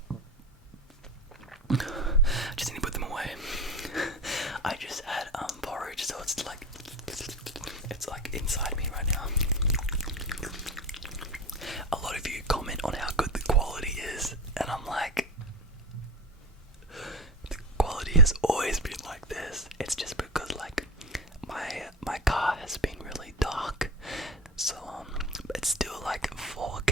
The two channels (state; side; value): normal; both; correlation 0.23